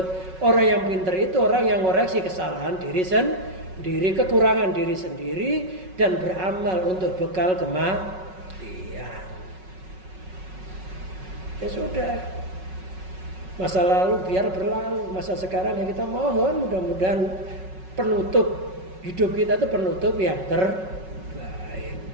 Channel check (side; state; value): left; late; 5.4 ms